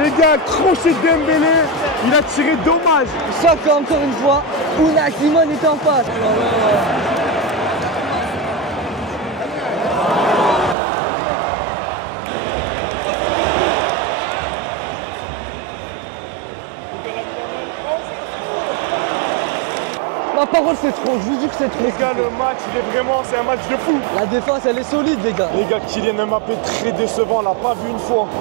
gars, crochet de Dembélé, il a tiré dommage. Sauf qu'encore une fois, Unai Simon est en face. Ma parole c'est trop, je vous dis que c'est trop. Les gars, le match, c'est un match de fou. La défense elle est solide les gars. Les gars, Kylian Mbappé très décevant, on l'a pas vu une fois.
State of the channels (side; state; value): left; drops out; at 10.8 s